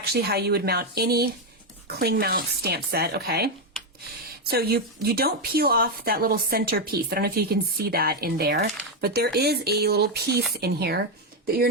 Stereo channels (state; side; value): normal; both; correlation 0.05